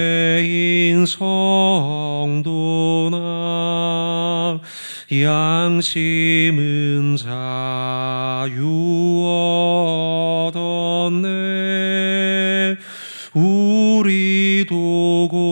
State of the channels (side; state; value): both; inverted; correlation -1.00